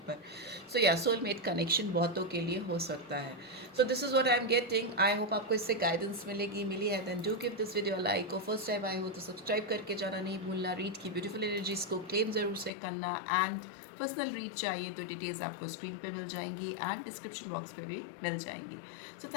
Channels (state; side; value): drops out; right; at 12.7 s